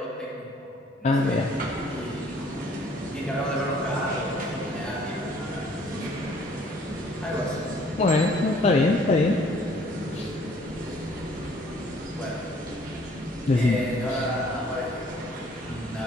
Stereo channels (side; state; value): both; normal; correlation 0.59